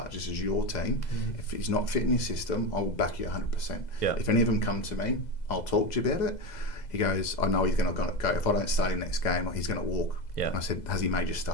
This is your team. If he's not fitting your system, I will back you 100%. If any of them come to me, I'll talk to you about it. He goes, I know he's going to go. If I don't start him next game, he's going to walk. And I said, has he made your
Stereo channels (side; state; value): right; late; 2.0 ms